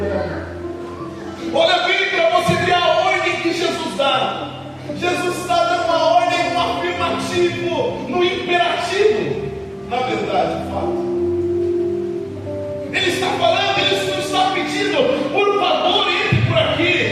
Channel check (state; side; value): identical; both; correlation 1.00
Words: ela. Olha bem para você ver a ordem que Jesus dá. Jesus está dando uma ordem no afirmativo, no imperativo, na verdade, fato. Ele está falando, ele não está pedindo: por favor, entre por